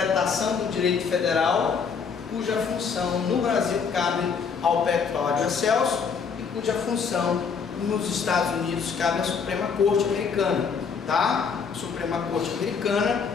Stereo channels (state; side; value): quieter; right; 6.0 dB